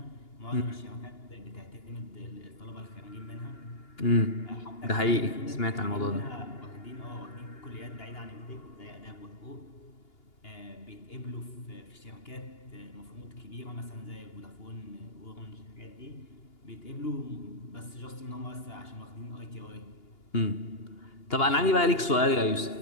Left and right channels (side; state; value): right; late; 2.8 ms